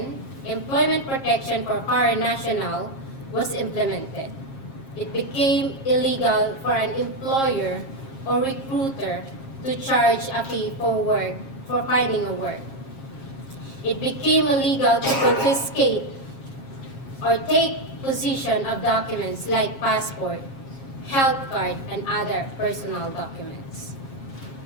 Employment Protection for Foreign National, was implemented. It became illegal for an employer or recruiter to charge a fee for finding a work. It became illegal to confiscate or take possession of documents like passport, health card, and other personal documents.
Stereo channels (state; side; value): late; right; 7.4 ms